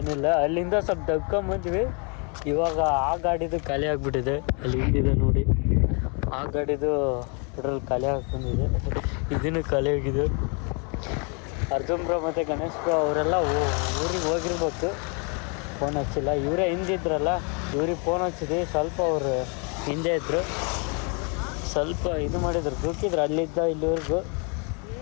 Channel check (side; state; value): right; quieter; 35.4 dB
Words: ಅಲ್ಲಿಂದ ಸ್ವಲ್ಪ ದಗ್ಕೊಂಬಂದ್ವಿ. ಇವಾಗ ಆ ಗಾಡಿದು ಖಾಲಿ ಆಗಿಬಿಟ್ಟಿದೆ. ಅಲ್ಲಿ ಹಿಂದಿದೆ ನೋಡಿ, ಆ ಗಾಡಿದು ಪೆಟ್ರೋಲ್ ಖಾಲಿ ಆಗಿ ಬಂದಿದೆ. ಇದನ್ನು ಖಾಲಿ ಆಗಿದೆ. ಅರ್ಜುನ್ ಬ್ರೋ ಮತ್ತು ಗಣೇಶ್ ಬ್ರೋ ಅವರೆಲ್ಲ ಊರಿಗೆ ಹೋಗಿರ್ಬೇಕು. ಫೋನ್ ಹಚ್ಚಿಲ್ಲ. ಇವರೇ ಹಿಂದಿದ್ರಲ್ಲ, ಇವ್ರಿಗೆ ಫೋನ್ ಹಚ್ಚಿದ್ವಿ. ಸ್ವಲ್ಪ ಅವರು ಹಿಂದೆ ಇದ್ದರು, ಸ್ವಲ್ಪ ಇದು ಮಾಡಿದ್ರು, ದುಃಖಿದ್ರು. ಅಲ್ಲಿದ್ದ ಇಲ್ಲಿವರೆಗೂ